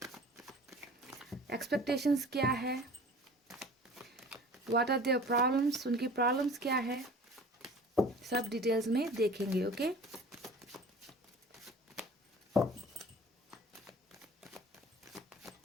expectations क्या है, what are their problems, उनकी प्रॉब्लम्स क्या है, सब डिटेल्स में देखेंगे। ओके,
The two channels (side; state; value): both; normal; correlation 0.44